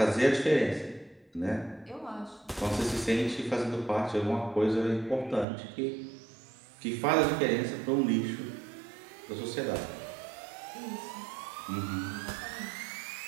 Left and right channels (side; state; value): left; drops out; at 5.5 s